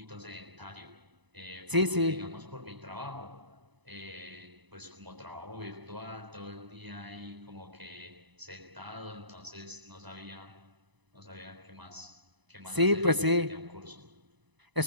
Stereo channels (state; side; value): late; left; 1.0 ms